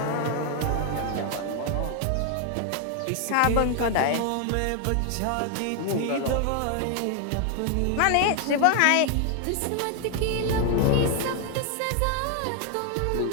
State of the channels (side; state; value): both; different; correlation 0.00